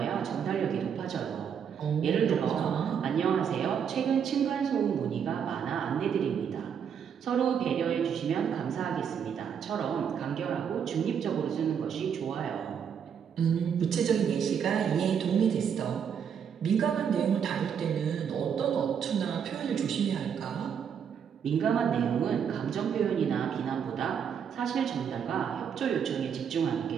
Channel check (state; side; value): quieter; left; 7.6 dB